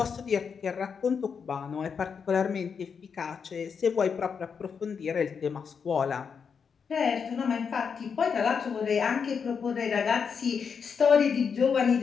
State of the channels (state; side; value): quieter; right; 6.3 dB